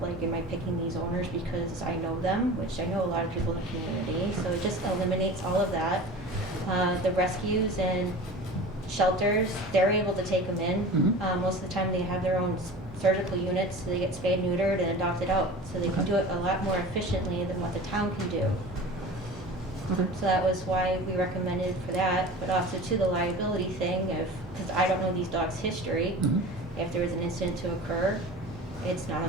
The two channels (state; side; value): normal; both; correlation 0.36